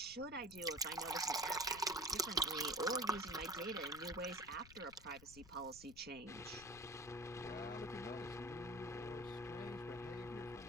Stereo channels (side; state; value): left; noise; rumble, 19 dB below the sound